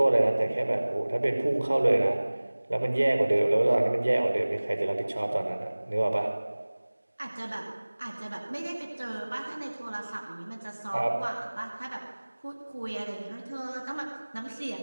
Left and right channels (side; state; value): both; inverted; correlation -1.00